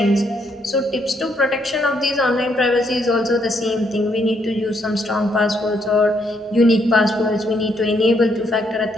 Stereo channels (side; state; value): both; normal; correlation 0.73